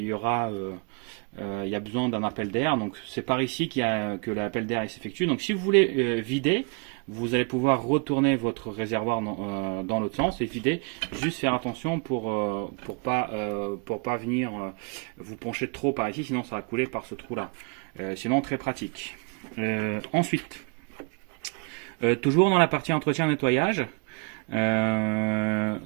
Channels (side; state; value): left; quieter; 33.5 dB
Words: y a besoin d'un appel d'air, donc c'est par ici que l'appel d'air s'effectue. Donc si vous voulez vider, vous allez pouvoir retourner votre réservoir dans l'autre sens et vider. Juste faire attention pour pas venir vous pencher trop par ici, sinon ça va couler par ce trou là. Sinon très pratique. Ensuite, toujours dans la partie entretien nettoyage,